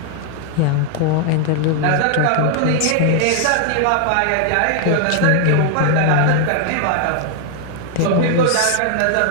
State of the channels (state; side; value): different; both; correlation 0.00